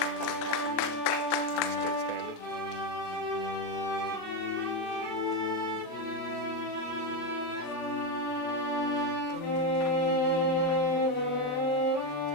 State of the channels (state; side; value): late; right; 38 ms